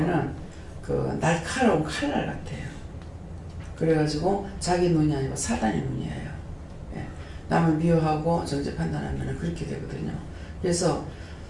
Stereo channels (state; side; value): identical; both; correlation 1.00